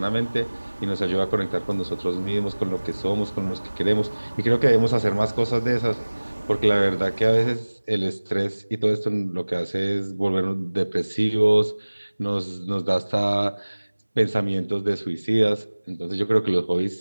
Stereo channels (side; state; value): both; inverted; correlation -1.00